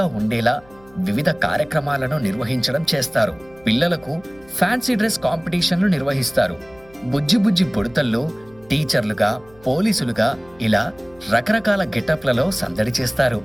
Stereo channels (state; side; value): noise; left; hum, 27 dB below the sound